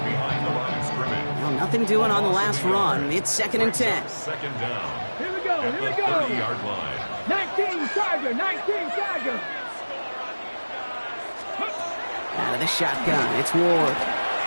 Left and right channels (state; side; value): inverted; both; correlation -1.00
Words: Well, nothing doing on the last run. It's second and 10. Second down. Here we go, here we go. 30-yard line. 19 Tiger, 19 Tiger. Out of the shotgun, it's Ward.